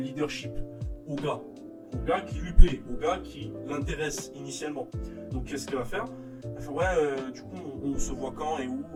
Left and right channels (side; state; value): both; identical; correlation 1.00